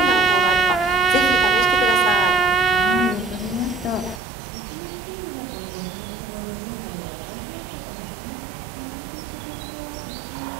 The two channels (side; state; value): left; drops out; at 4.2 s